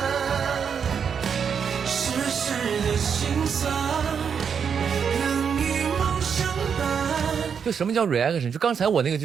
世事的辛酸。就什么叫 reaction？ 就刚才我那个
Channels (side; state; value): left; quieter; 6.9 dB